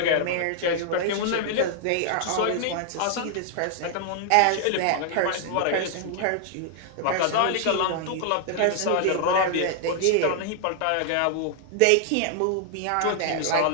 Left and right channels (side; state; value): both; different; correlation 0.00